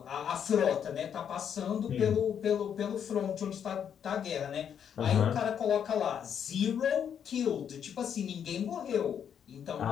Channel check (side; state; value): right; quieter; 8.3 dB